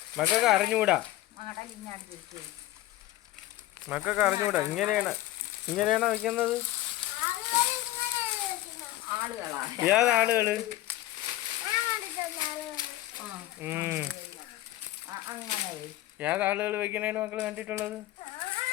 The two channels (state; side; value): quieter; right; 16.0 dB